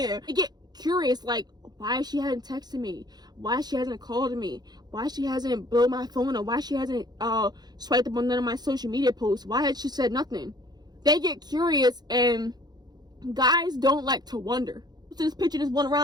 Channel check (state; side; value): late; left; 0.20 ms